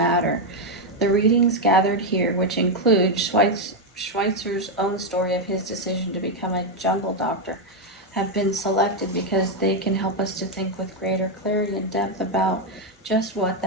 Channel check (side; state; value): both; normal; correlation 0.04